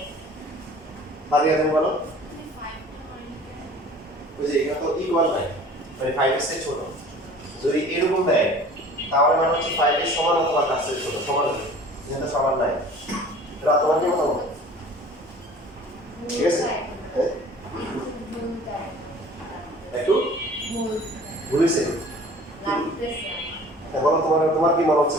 ফাতিহা তুমি বলো। ওই যে এখানে তো ইকুয়াল নাই, মানে 5 এর চেয়ে ছোট। যদি এরকম দেয় তাহলে মানে হচ্ছে 5 এর সমান অথবা তার চেয়ে ছোট। সমান হবে, যেটা সমান নাই। রাত তোমার কি মতামত? ঠিক আছে? হ্যাঁ, একটু ভুল হয়েছে। বলো তোমার কি মনে হচ্ছে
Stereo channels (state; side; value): normal; both; correlation 0.46